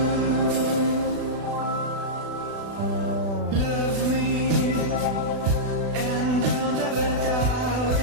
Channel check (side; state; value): left; late; 36 ms